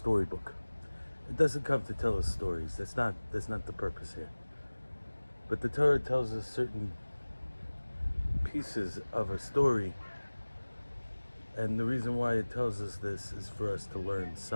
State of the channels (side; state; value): both; inverted; correlation -1.00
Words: It doesn't come to tell us stories. That's not the purpose here. But the Torah tells us certain pieces of a story, and the reason why it tells us this is for us to learn